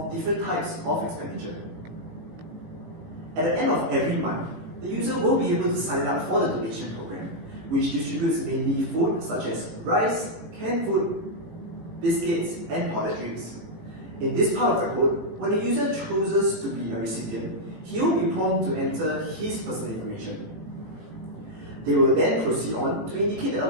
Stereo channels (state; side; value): late; left; 19 ms